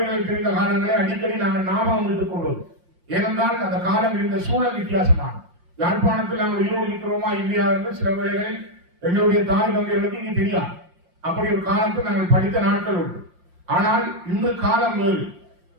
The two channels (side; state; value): left; late; 5.7 ms